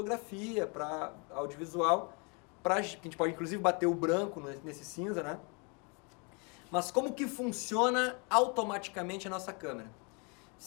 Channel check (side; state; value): right; quieter; 33.5 dB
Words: para audiovisual, a gente pode inclusive bater o branco nesse cinza, né? Mas como que funciona automaticamente a nossa câmera?